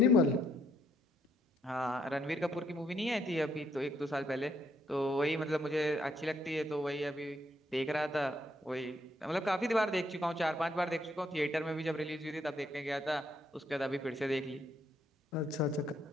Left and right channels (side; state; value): both; normal; correlation 0.72